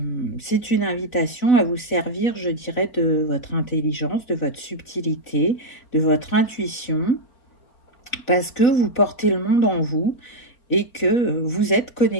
c'est une invitation à vous servir, je dirais, de votre intelligence, de votre subtilité, de votre intuition, parce que vous portez le monde en vous et que vous êtes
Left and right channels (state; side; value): late; right; 4.0 ms